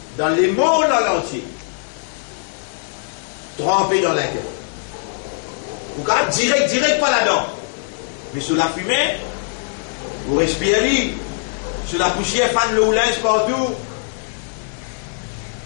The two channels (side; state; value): right; silent; digital silence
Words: dans les mondes entier trempé dans l'intérêt. Vous pouvez direct pas là-dedans. Mais sur la fumée, vous respirez, sur la poussière, fan le linge partout.